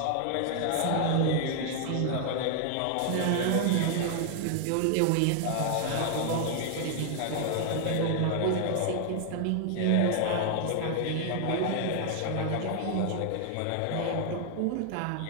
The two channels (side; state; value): both; different; correlation 0.00